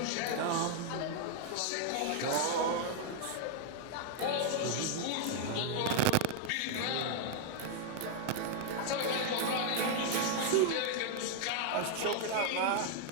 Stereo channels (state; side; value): different; both; correlation 0.00